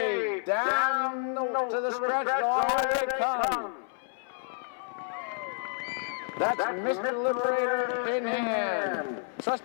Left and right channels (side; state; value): right; silent; 58 dB below the other